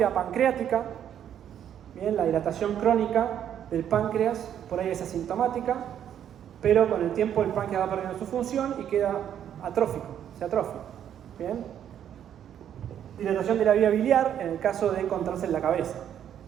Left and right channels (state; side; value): quieter; left; 9.7 dB